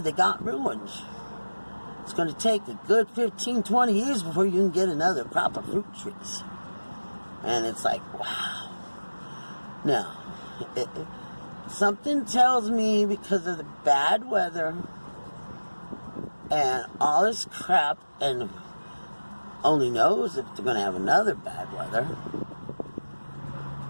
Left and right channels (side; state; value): both; inverted; correlation -1.00